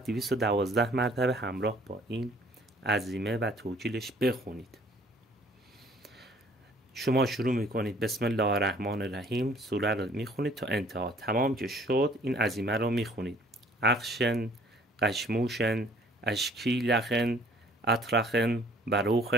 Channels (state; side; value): normal; both; correlation 0.57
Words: 212 مرتبه همراه با این عزیمه و توکیلش بخونید. شما شروع میکنید بسم الله الرحمن الرحیم، سوره رو میخونید تا انتها. تمام که شد این عزیمه رو میخونید. اخشن، قشموشن، اشکیلخن، اطرخن،